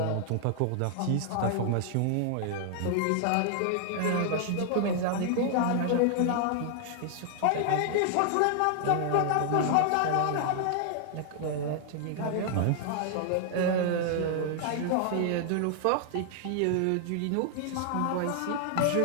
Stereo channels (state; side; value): different; both; correlation 0.00